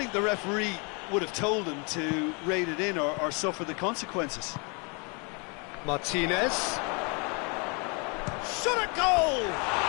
the referee would have told him to rate it in or suffer the consequences. Martinez. Shot at goal!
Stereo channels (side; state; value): right; quieter; 33.2 dB